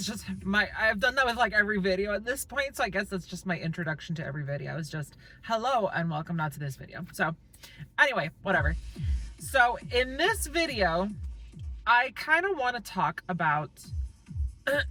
just I've done that with like every video at this point, so I guess that's just my introduction to every video is just hello and welcome now to this video. So anyway, whatever. So in this video, I kind of want to talk about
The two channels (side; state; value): both; identical; correlation 1.00